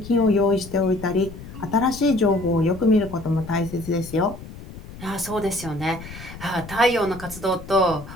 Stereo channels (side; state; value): left; noise; rumble, 14 dB below the sound